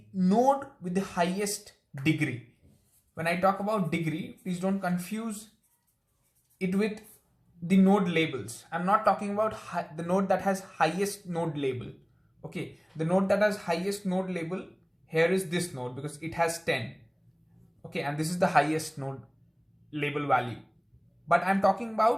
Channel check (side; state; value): both; identical; correlation 1.00